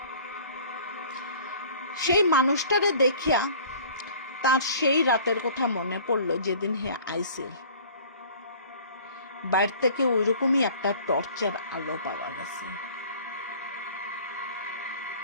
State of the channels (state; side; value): inverted; both; correlation -0.48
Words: সেই মানুষটারে দেখিয়া তার সেই রাতের কথা মনে পড়লো যেদিন হে আইছিল। বাইরে থেকে ওইরকমই একটা টর্চের আলো পাওয়া গেছে।